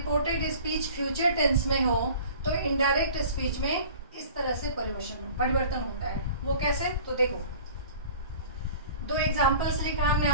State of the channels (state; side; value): inverted; both; correlation -0.45